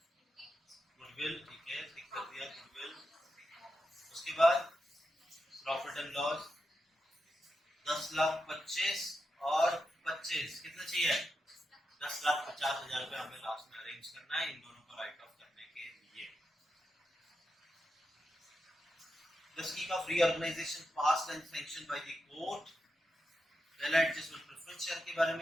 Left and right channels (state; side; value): normal; both; correlation 0.87